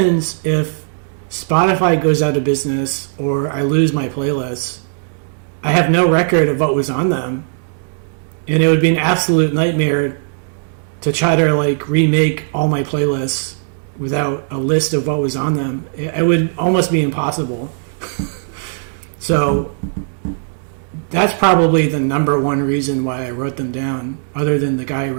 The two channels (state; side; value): silent; left; digital silence